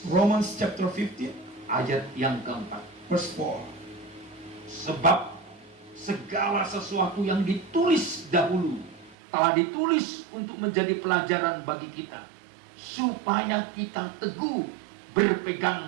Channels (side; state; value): left; drops out; at 9.2 s